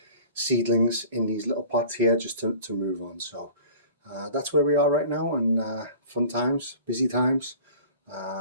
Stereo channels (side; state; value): both; inverted; correlation -0.44